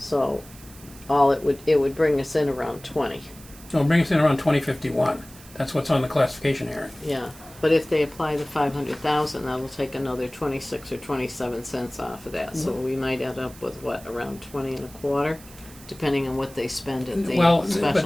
it would bring us in around 20. So it'll bring us in around 2051. That's what's on the classification hearing. Yeah, but if they apply the 500,000, that'll take another 26 or 27 cents off of that. So we might end up with around 20 and a quarter, depending on what they spend at the Well,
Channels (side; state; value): right; noise; hiss, 20 dB below the sound